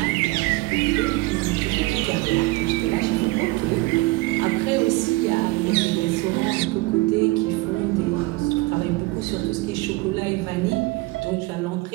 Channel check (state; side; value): quieter; left; 22.3 dB